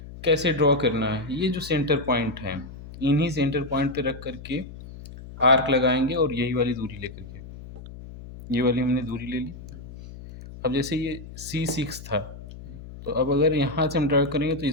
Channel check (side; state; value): left; noise; hum, 14 dB below the sound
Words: कैसे ड्रॉ करना है, ये जो सेंटर पॉइंट है इन्हीं सेंटर पॉइंट पे रख करके आर्क लगाएंगे, और यही वाली दूरी लेकर के, ये वाली हमने दूरी ले ली। अब जैसे ये C6 था, तो अब अगर यहाँ से हम ड्रॉ करेंगे तो